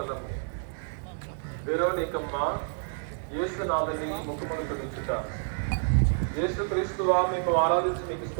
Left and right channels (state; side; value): silent; left; 59 dB below the other